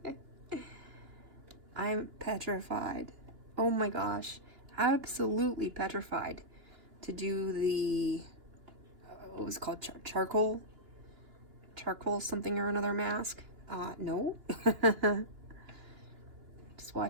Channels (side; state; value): left; late; 2.9 ms